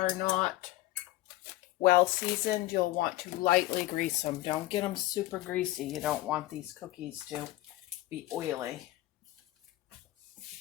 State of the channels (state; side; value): quieter; right; 16.9 dB